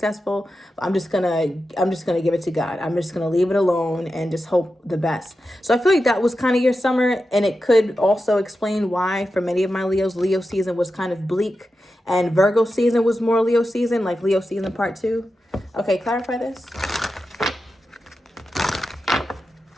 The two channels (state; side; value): normal; both; correlation 0.91